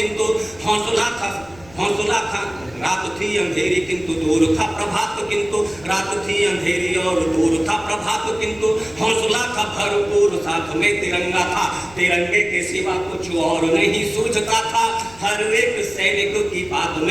हौसला था रात थी अंधेरी किंतु दूर था प्रभात, किंतु रात थी अंधेरी और दूर था प्रभात, किंतु हौसला था भरपूर, साथ में तिरंगा था। तिरंगे के सिवा कुछ और नहीं सूझता था, हर एक सैनिक की बात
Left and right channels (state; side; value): noise; left; rumble, 23 dB below the sound